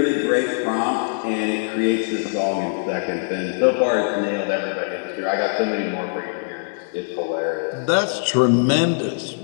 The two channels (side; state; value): right; silent; 61 dB below the other